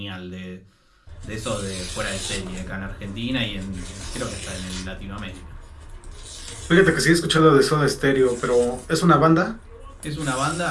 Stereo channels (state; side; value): identical; both; correlation 1.00